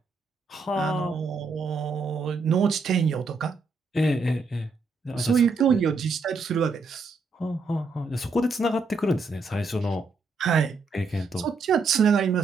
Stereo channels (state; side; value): quieter; left; 3.9 dB